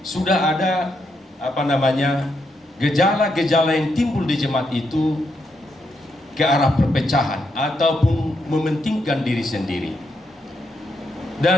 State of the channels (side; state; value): both; normal; correlation 0.80